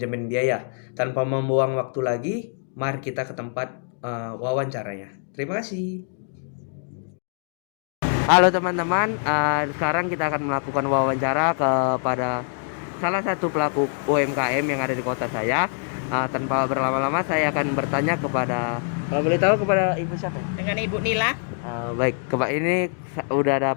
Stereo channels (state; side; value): silent; right; 62 dB below the other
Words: biaya. Tanpa membuang waktu lagi, mari kita ke tempat wawancaranya. Terima kasih. Halo teman-teman, sekarang kita akan melakukan wawancara kepada salah satu pelaku UMKM yang ada di kota saya. Tanpa berlama-lama, saya akan bertanya kepada, kalau boleh tahu, kepada Ibu siapa? Dengan Ibu Nila. Baik, ini udah ada